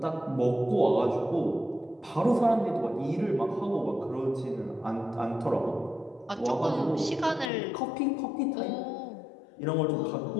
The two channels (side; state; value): right; drops out; at 7.5 s